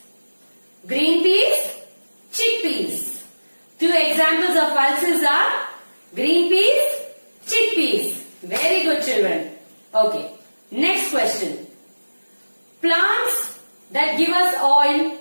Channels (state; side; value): inverted; both; correlation -1.00